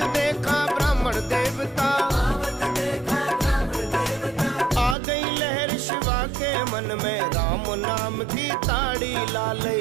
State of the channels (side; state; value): left; drops out; at 5.0 s